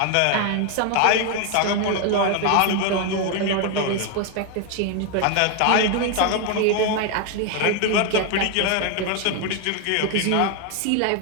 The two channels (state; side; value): different; both; correlation 0.01